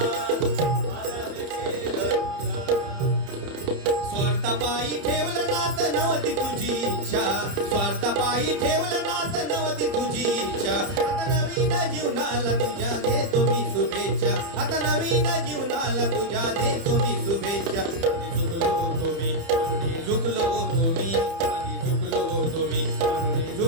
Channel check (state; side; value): late; left; 30 ms